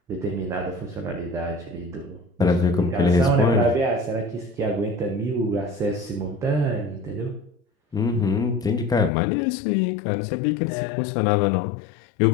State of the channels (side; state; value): right; drops out; at 9.1 s